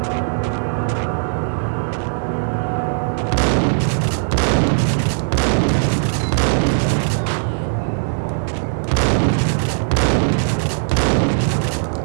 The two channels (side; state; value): left; silent; digital silence